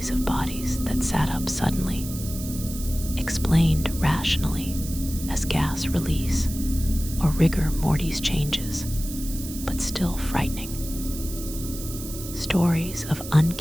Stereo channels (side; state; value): right; noise; hiss, 11 dB below the sound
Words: of bodies that sat up suddenly, explained rationally as gas release or rigor mortis changes, but still frightening. Stories of